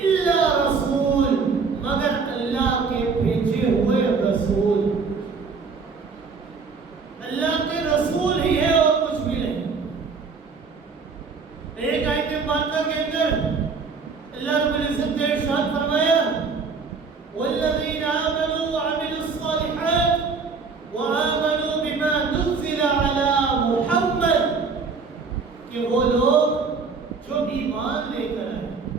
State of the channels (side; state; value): left; quieter; 4.9 dB